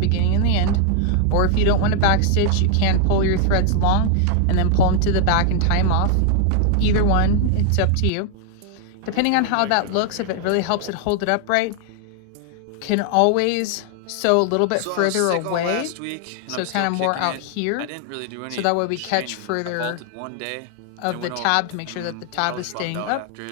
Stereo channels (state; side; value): different; both; correlation 0.00